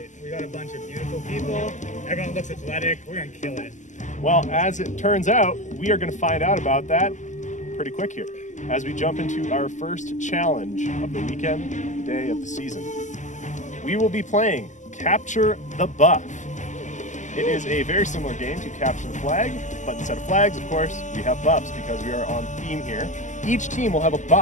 We got a bunch of beautiful people, everyone looks athletic, we're gonna kill it. Well, as it turns out, we are going to find out about that pretty quick here as we jump into our first challenge of the weekend, of the day of the season. We will be playing Capture the Buff. It is a very similar game to Capture the Flag, but instead of flags, of course, we have buffs because we are on theme here. Each team will have a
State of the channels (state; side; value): late; right; 0.35 ms